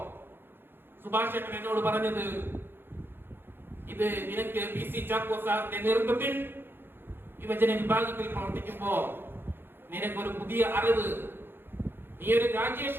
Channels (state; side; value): late; left; 0.10 ms